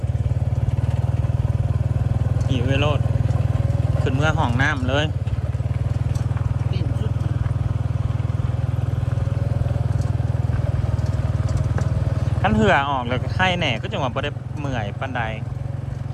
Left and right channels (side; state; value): both; identical; correlation 1.00